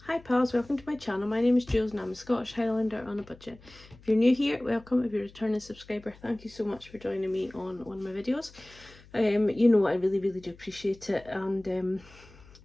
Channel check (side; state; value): left; noise; hum, 23 dB below the sound